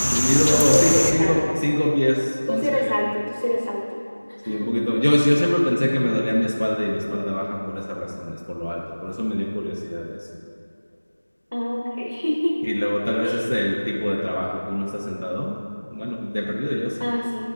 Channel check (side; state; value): both; inverted; correlation -1.00